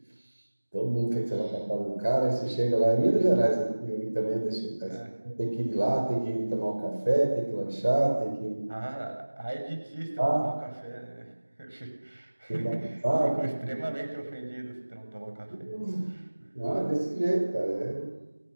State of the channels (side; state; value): both; inverted; correlation -1.00